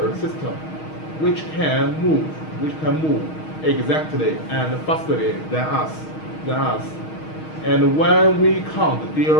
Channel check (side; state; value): right; late; 6.4 ms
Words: system which can move exactly and fastly than us. And when we can't